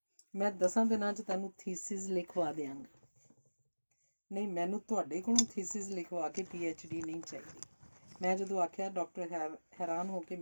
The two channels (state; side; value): inverted; both; correlation -1.00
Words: 10 ਦਿਨਾਂ 'ਚ ਤੈਨੂੰ ਥੀਸਿਸ ਲਿਖਵਾ ਦਿਆਂਗਾ। ਨਹੀਂ, ਮੈਨੂੰ ਤੁਹਾਡੇ ਕੋਲੋਂ ਥੀਸਿਸ ਲਿਖਵਾ ਕੇ PhD ਨਹੀਂ ਚਾਹੀਦੀ। ਮੈਂ ਜਦੋਂ ਆਖਿਆ, ਡਾਕਟਰ ਹੈਰਾਨ ਹੋ ਕੇ